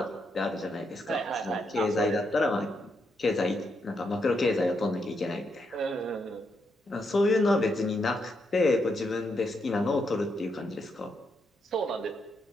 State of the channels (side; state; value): both; normal; correlation 0.80